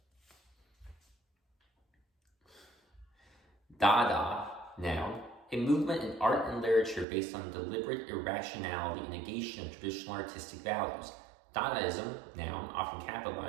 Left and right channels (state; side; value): drops out; left; at 7.1 s